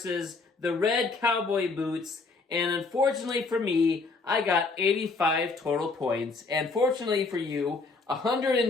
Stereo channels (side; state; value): right; quieter; 4.0 dB